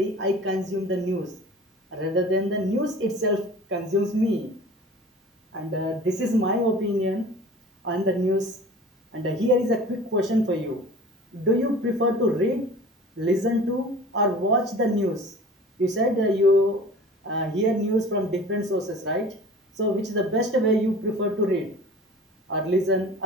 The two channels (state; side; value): normal; both; correlation 0.42